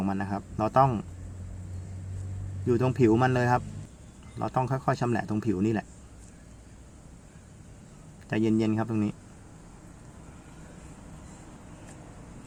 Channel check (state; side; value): identical; both; correlation 1.00